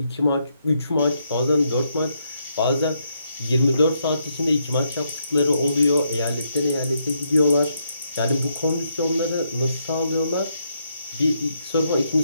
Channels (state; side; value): inverted; both; correlation -0.77